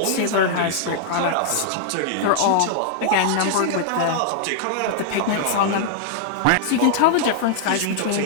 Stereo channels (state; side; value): different; both; correlation -0.01